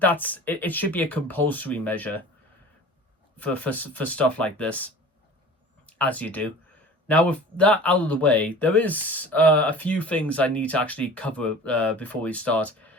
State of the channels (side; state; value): both; normal; correlation 0.41